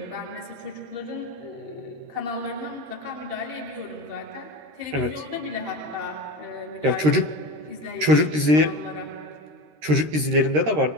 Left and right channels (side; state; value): left; late; 13 ms